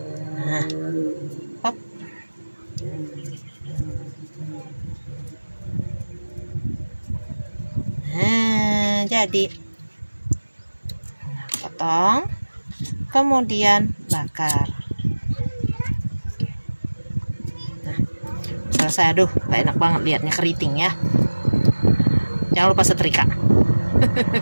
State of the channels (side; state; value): both; inverted; correlation -1.00